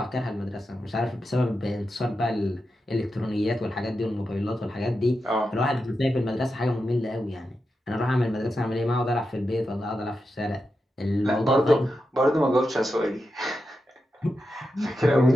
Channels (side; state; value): both; normal; correlation 0.88